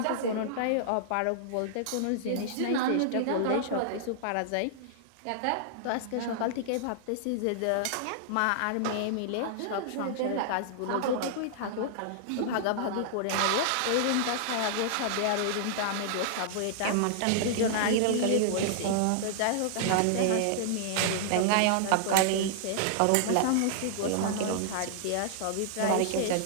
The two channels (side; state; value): both; different; correlation -0.01